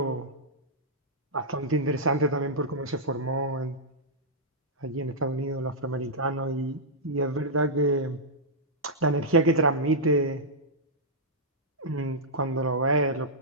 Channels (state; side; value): normal; both; correlation -0.11